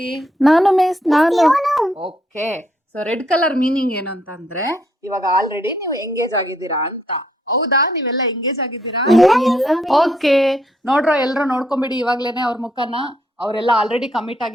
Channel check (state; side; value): normal; both; correlation 0.72